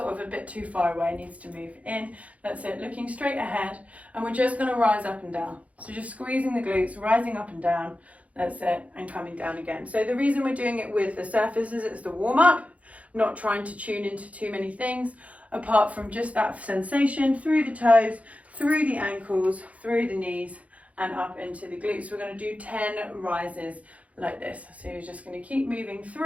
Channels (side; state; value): left; late; 0.067 ms